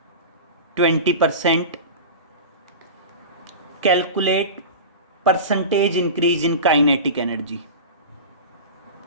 20%, calculate percentage increase in kinetic energy,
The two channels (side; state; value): both; inverted; correlation -0.30